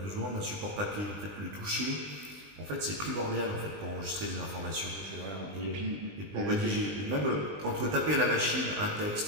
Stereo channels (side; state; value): left; late; 20 ms